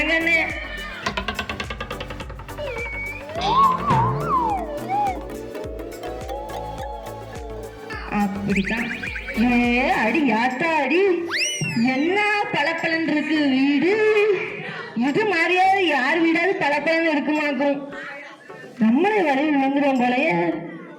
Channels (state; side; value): identical; both; correlation 1.00